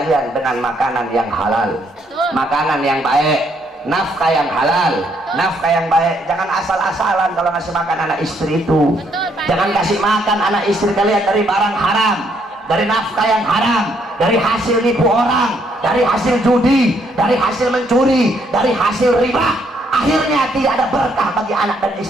dengan makanan yang halal, makanan yang baik, nafkah yang halal, nafkah yang baik. Jangan asal-asalan kalau ngasih makan anak istri itu. Jangan kasih makan anak istri kalian dari barang haram, dari nafkah yang haram, dari hasil nipu orang, dari hasil judi, dari hasil mencuri, dari hasil riba. Akhirnya tidak ada berkah bagi anak dan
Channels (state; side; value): normal; both; correlation 0.71